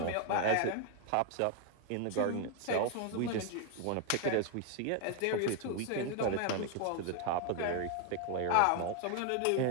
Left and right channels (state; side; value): different; both; correlation 0.01